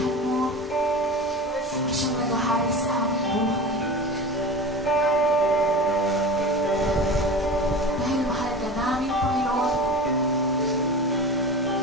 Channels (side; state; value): both; normal; correlation 0.31